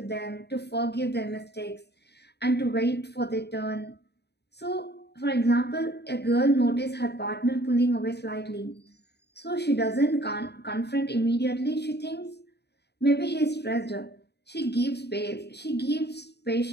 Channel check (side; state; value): right; late; 0.48 ms